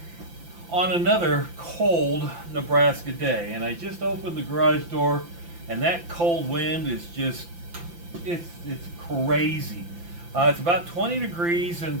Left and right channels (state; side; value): late; left; 5.9 ms